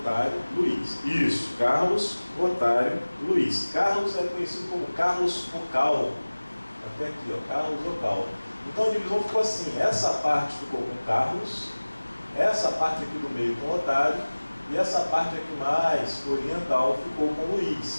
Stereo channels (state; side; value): inverted; both; correlation -1.00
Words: Luís. Isso, Carlos, Lotário, Luís. Carlos é conhecido como Carlos Focal. Até aqui, ó, Carlos Focal. Então a divisão ficou assim: essa parte ficou com Carlos, essa parte aqui do meio com Lotário, e essa parte aqui mais oriental ficou com